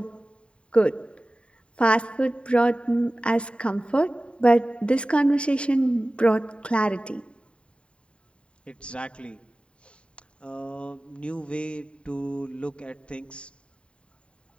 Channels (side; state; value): right; late; 0.056 ms